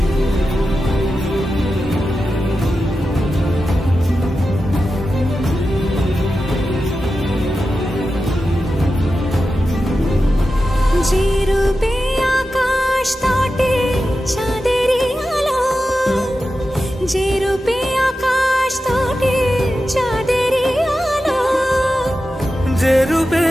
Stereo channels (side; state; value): both; normal; correlation 0.92